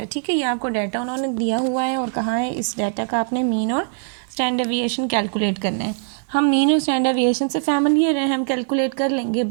ठीक है, ये आपको डाटा उन्होंने दिया हुआ है और कहा है इस डाटा का आपने मीन और स्टैंडर्ड डेविएशन कैलकुलेट करना है। हम मीन और स्टैंडर्ड डेविएशन से फैमिलियर हैं, हम कैलकुलेट कर लेंगे,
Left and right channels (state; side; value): silent; left; digital silence